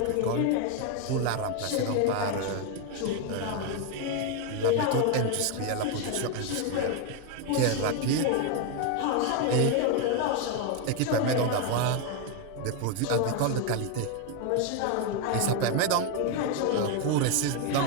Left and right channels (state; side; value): different; both; correlation 0.01